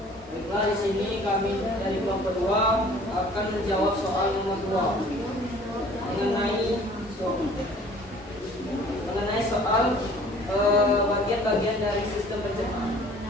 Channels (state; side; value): normal; both; correlation 0.51